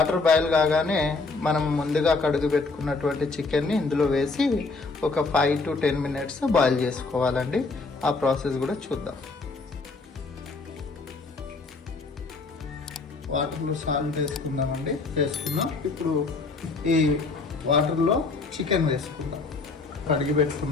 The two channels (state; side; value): quieter; right; 3.9 dB